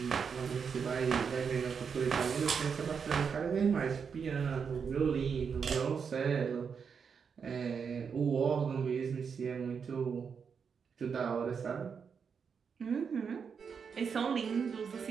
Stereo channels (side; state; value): left; quieter; 6.3 dB